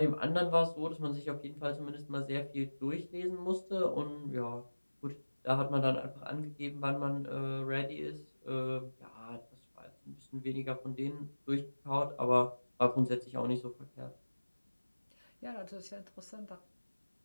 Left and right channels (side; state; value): both; inverted; correlation -1.00